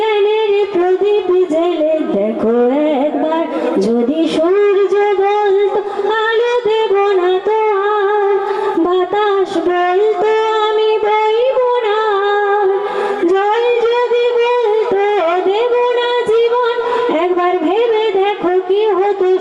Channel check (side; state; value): both; identical; correlation 1.00